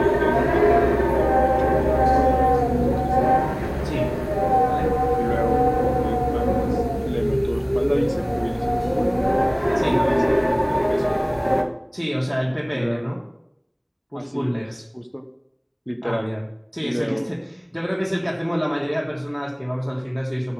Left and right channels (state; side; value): identical; both; correlation 1.00